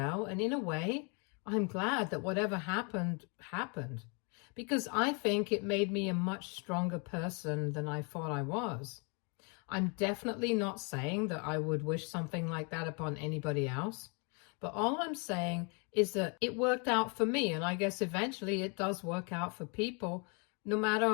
and in a way, I'm glad that whatever happened, happened, because I think it made me a much stronger person than I thought I was. I'm definitely not saying that I would wish something like that upon anybody else. But all I'm saying is that it worked out for me, and I guess eventually it does work out for people, no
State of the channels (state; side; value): quieter; right; 34.7 dB